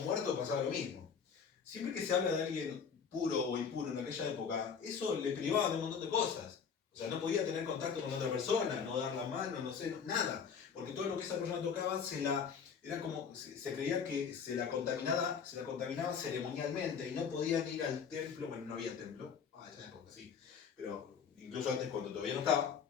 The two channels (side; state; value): right; quieter; 6.6 dB